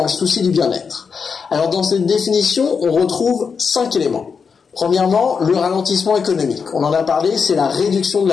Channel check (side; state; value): right; quieter; 5.8 dB